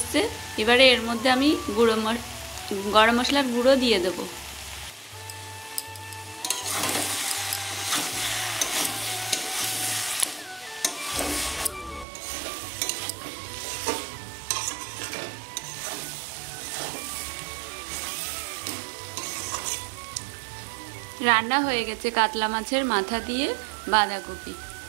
এবারে এর মধ্যে আমি গরম মশলার গুঁড়ো দিয়ে দেব। রান্না হয়ে গেছে কাতলা মাছের মাথা দিয়ে বাঁধাকপি।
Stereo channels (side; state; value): left; drops out; at 12.1 s